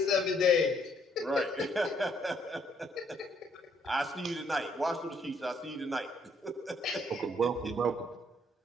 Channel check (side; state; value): both; normal; correlation 0.68